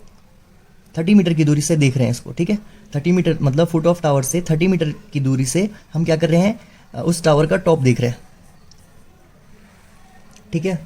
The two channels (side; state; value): both; identical; correlation 1.00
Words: 30 मीटर की दूरी से देख रहे हैं इसको, ठीक है, 30 मीटर मतलब फुट ऑफ टावर से 30 मीटर की दूरी से हम क्या कर रहे हैं, उस टावर का टॉप देख रहे हैं, ठीक